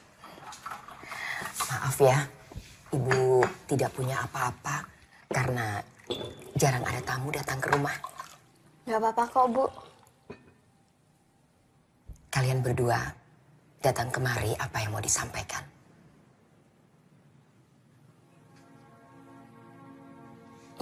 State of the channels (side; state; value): both; identical; correlation 1.00